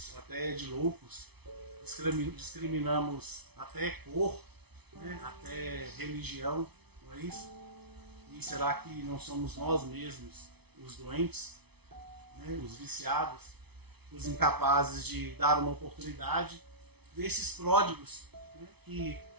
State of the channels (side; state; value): left; late; 0.99 ms